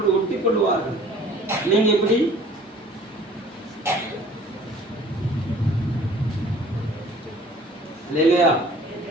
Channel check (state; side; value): normal; both; correlation 0.51